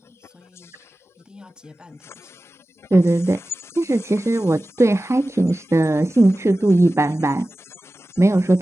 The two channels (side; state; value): both; normal; correlation 0.96